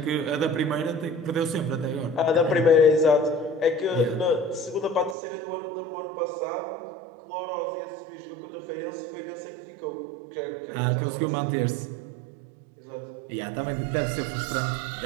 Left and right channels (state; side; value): drops out; left; at 5.2 s